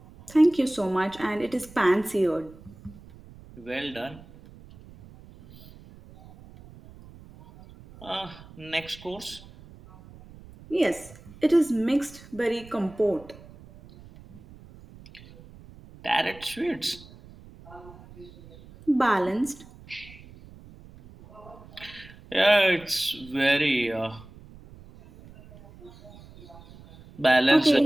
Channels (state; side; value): noise; right; rumble, 21 dB below the sound